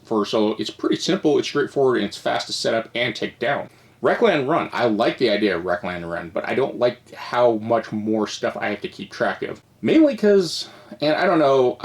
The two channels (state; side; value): identical; both; correlation 1.00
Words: pretty simple, it's straightforward, and it's fast to set up and take down. Wreckland Run, I like the idea of Wreckland Run, but I don't like how much more stuff I have to keep track of. Mainly because, and I don't know,